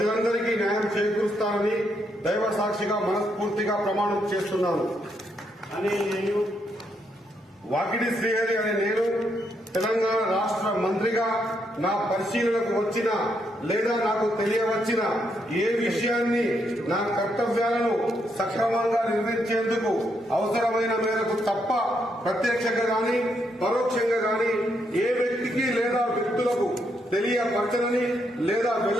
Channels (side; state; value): both; normal; correlation 0.77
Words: న్యాయం చేకూరుస్తానని దైవ సాక్షిగా మనస్ఫూర్తిగా ప్రమాణం చేస్తున్నాను అని వాకిడి శ్రీహరి అనే నేను తెలంగాణ రాష్ట్ర మంత్రిగా నా పరిశీలనకు వచ్చిన లేదా నాకు తెలియవచ్చిన ఏ విషయాన్ని నా కర్తవ్యాలను సక్రమంగా నిర్వహించేందుకు అవసరమైన మేరకు తప్ప ప్రత్యక్షంగా గాని పరోక్షంగా గాని ఏ వ్యక్తికి లేదా వ్యక్తులకు తెలియపరచనని లేదా